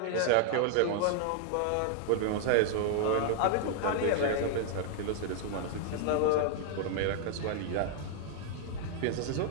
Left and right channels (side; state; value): both; different; correlation 0.00